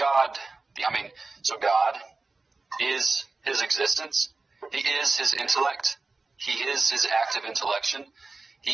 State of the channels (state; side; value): quieter; left; 3.7 dB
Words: is his existence. He is his intellect. He is his active intellection.